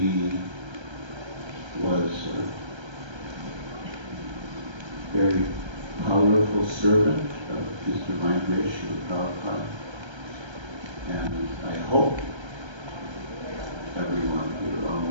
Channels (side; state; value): left; late; 1.3 ms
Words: was a very powerful servant of His Divine Grace, Srila Prabhupada. And I hope everyone here,